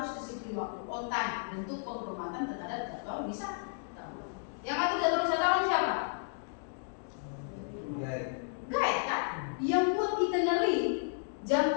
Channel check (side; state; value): right; silent; digital silence